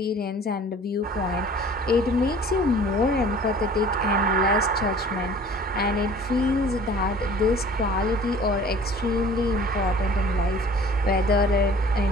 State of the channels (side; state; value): both; normal; correlation 0.48